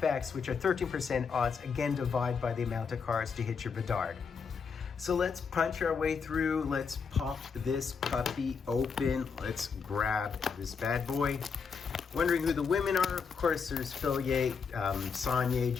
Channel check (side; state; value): right; quieter; 5.8 dB